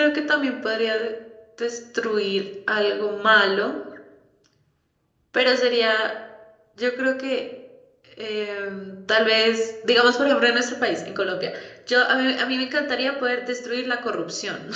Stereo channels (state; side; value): identical; both; correlation 1.00